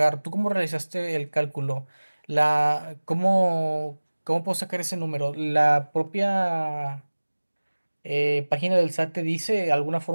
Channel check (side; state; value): both; inverted; correlation -1.00